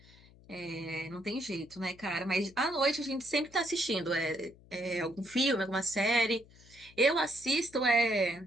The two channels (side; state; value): left; noise; hum, 24 dB below the sound